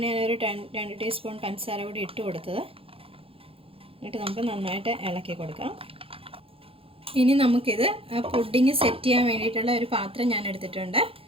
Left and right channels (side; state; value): left; late; 0.27 ms